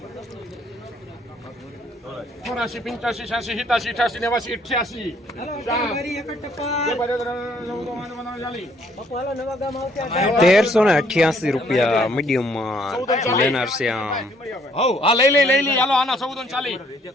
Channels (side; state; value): both; normal; correlation 0.65